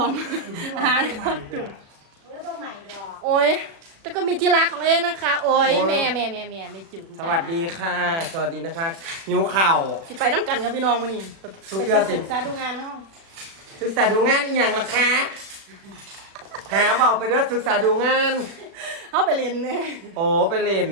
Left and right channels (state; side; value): late; left; 36 ms